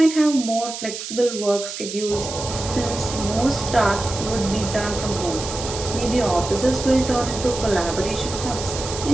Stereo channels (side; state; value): right; noise; hiss, 8 dB below the sound